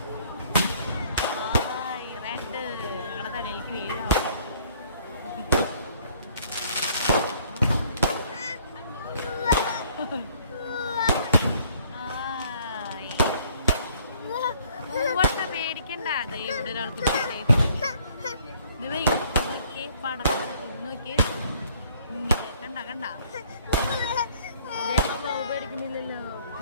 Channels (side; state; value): both; inverted; correlation -0.61